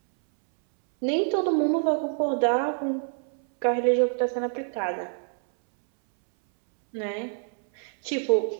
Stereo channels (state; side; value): silent; left; 61 dB below the other